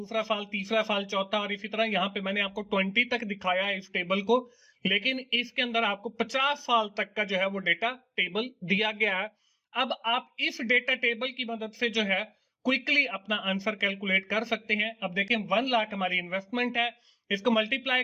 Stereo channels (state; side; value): identical; both; correlation 1.00